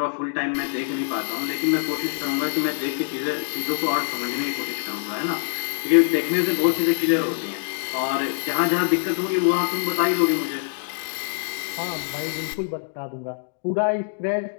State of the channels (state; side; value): silent; right; digital silence